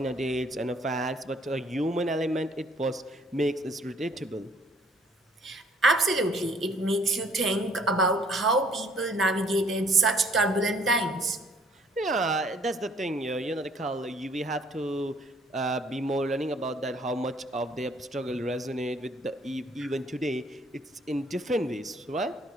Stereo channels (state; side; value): normal; both; correlation 0.61